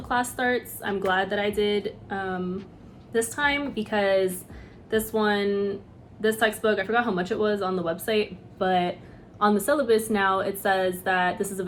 class starts. I'm glad that I did this time, because this textbook, I forgot how much it was on the website, but on the syllabus now it says that this is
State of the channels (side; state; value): both; identical; correlation 1.00